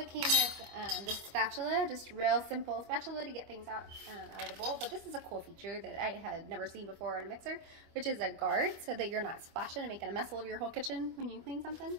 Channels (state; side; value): late; left; 25 ms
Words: came with the spatula, just real simple spatula to get things out of the bowl. But this is a cool feature that I had never seen before in a mixer, which is a guard so that you're not splashing and making a mess all over your whole kitchen when you clean something.